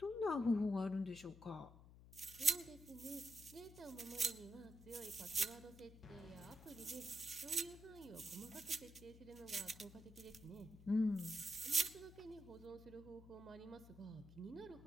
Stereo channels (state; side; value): noise; left; hum, 18 dB below the sound